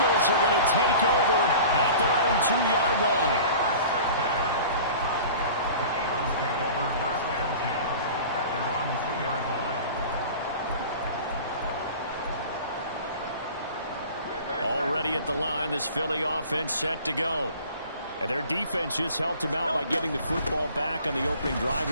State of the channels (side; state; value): both; inverted; correlation -0.42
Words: are going to take over at their own 2-yard line. The Eagles take over first and 10 at their own 2-yard line. Already at the line, this Philly offense set to go. And their defense just helped them out by getting the football back on the opening drive